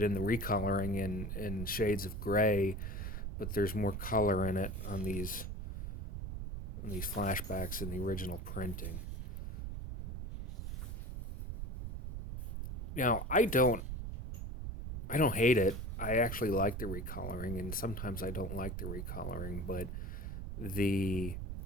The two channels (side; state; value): right; noise; rumble, 4 dB below the sound